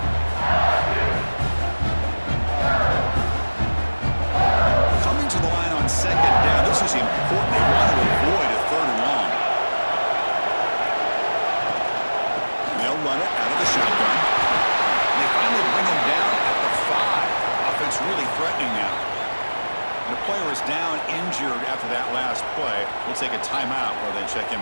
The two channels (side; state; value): both; inverted; correlation -1.00